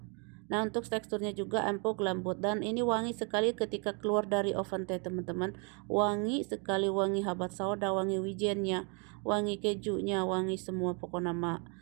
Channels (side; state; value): left; quieter; 35.1 dB